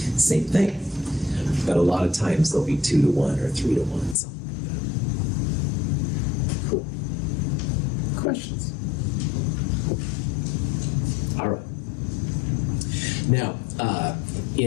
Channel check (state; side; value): drops out; right; at 4.2 s